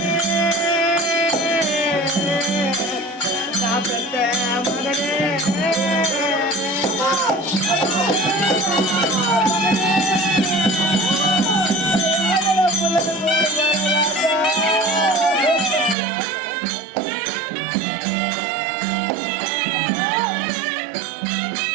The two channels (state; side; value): drops out; left; at 16.0 s